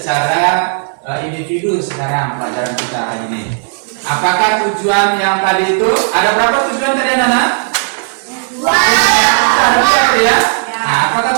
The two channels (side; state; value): left; silent; digital silence